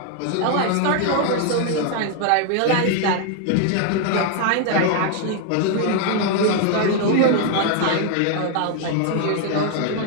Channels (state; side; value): different; both; correlation 0.00